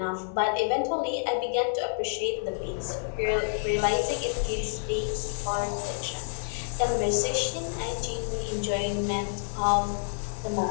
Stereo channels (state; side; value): silent; right; digital silence